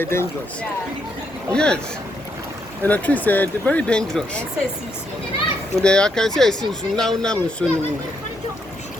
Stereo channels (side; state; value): both; normal; correlation 0.77